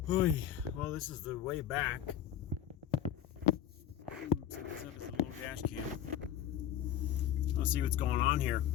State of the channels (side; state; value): right; quieter; 10.4 dB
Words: Oy. Well, this is the way back. Dash cam. Let's see what's going on here.